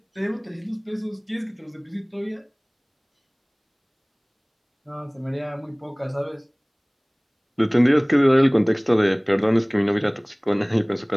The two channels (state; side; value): identical; both; correlation 1.00